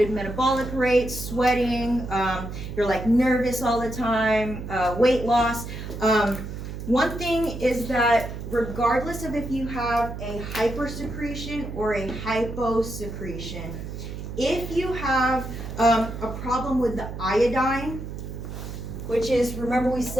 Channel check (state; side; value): noise; right; hum, 8 dB below the sound